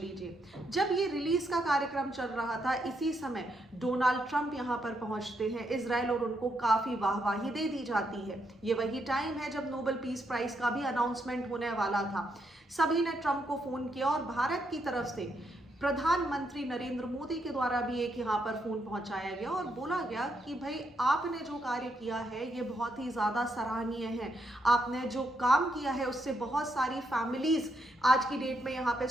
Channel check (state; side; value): normal; both; correlation 0.78